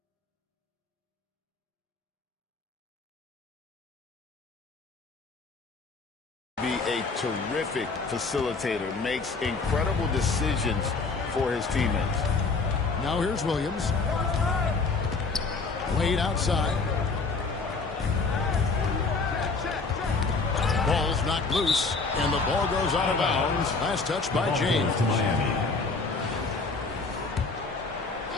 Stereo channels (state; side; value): quieter; right; 4.1 dB